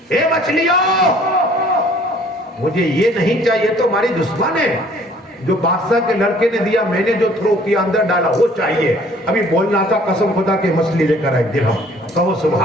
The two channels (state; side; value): normal; both; correlation 0.56